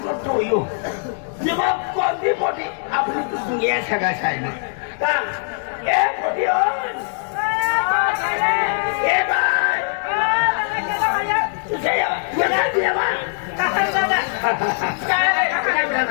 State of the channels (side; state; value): right; silent; digital silence